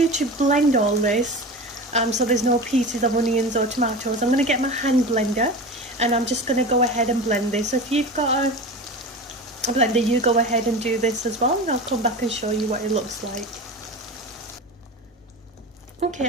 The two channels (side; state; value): both; normal; correlation 0.30